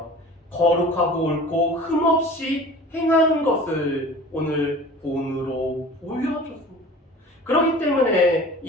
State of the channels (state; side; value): normal; both; correlation 0.42